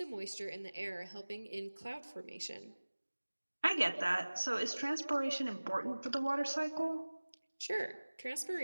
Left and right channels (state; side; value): inverted; both; correlation -1.00